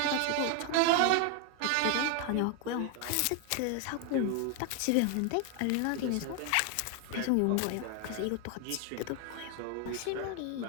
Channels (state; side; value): different; both; correlation 0.01